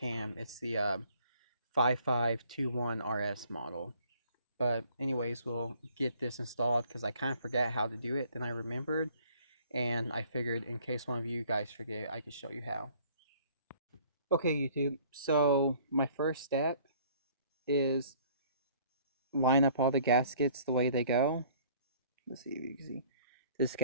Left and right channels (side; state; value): both; inverted; correlation -0.57